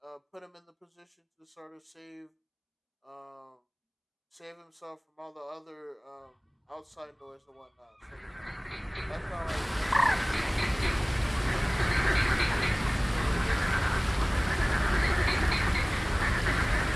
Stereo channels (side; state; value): both; identical; correlation 1.00